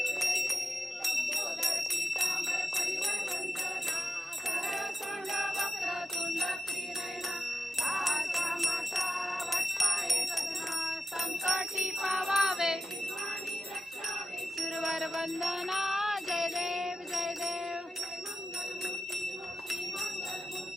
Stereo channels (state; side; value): normal; both; correlation 0.92